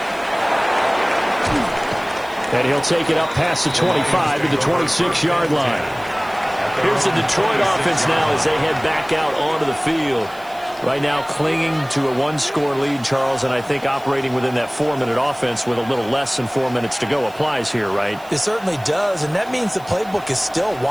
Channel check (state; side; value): noise; right; hiss, 24 dB below the sound